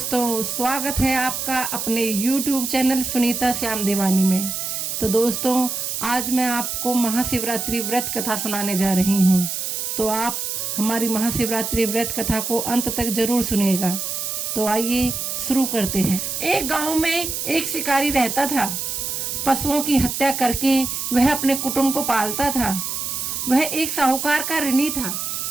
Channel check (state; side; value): noise; right; hiss, 3 dB below the sound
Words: स्वागत है आपका अपने YouTube चैनल सुनीता श्याम देवानी में। तो दोस्तों, आज मैं आपको महाशिवरात्रि व्रत कथा सुनाने जा रही हूँ। तो आप हमारी महाशिवरात्रि व्रत कथा को अंत तक जरूर सुनिएगा। तो आइए शुरू करते हैं। एक गांव में एक शिकारी रहता था। पशुओं की हत्या करके वह अपने कुटुंब को पालता था। वह एक साहूकार का ऋणी था,